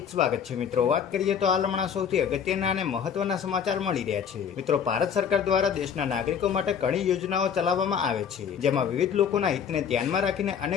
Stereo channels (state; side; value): quieter; right; 7.6 dB